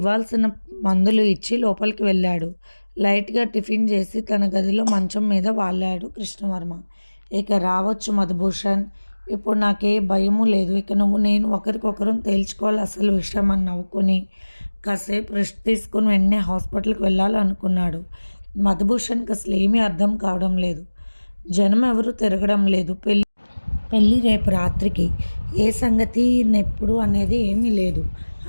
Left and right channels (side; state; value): both; inverted; correlation -1.00